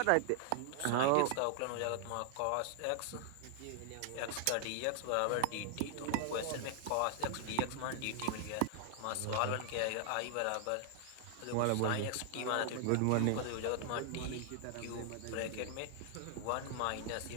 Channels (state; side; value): different; both; correlation 0.00